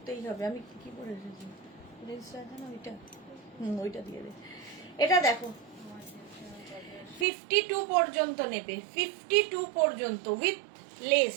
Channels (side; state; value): left; drops out; at 7.2 s